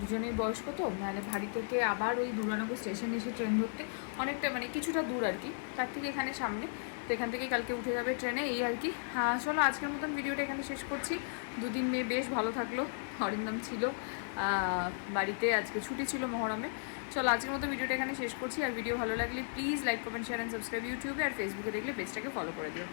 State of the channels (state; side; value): silent; right; digital silence